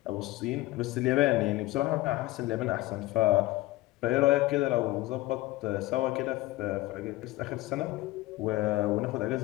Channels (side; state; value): right; quieter; 18.3 dB